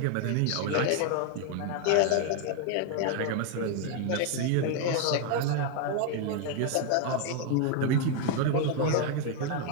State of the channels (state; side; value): different; both; correlation 0.01